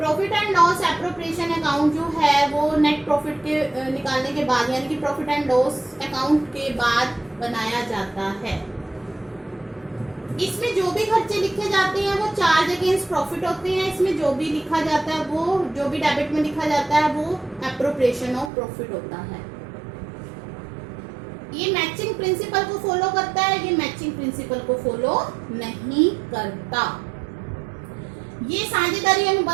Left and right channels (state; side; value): drops out; left; at 18.5 s